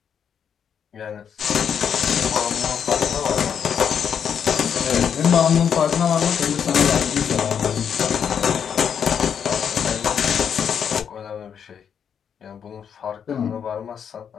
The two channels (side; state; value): right; quieter; 7.8 dB